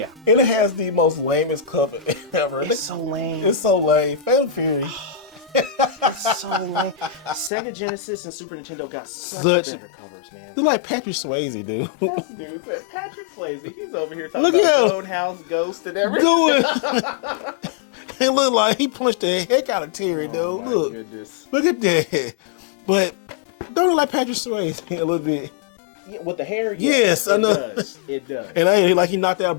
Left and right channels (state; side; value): drops out; right; at 7.5 s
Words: And it has the most lamest cover ever. It's so lame. It's so lame. Fatal Fury. It's so lame. Sega Genesis and Super Nintendo got such better covers, man. They're like Patrick Swayze, dude. This dude, Patrick Swayze, he's over here talking Look about at him. Roadhouse Ghost and everything. It looked like he punched the heck out of Terry, dude. Oh my Look. goodness. Look at that. But don't look like Patrick Swayze a little bit. Yeah, with the hair, Yes, I it know. does. It does. And I like he knocked out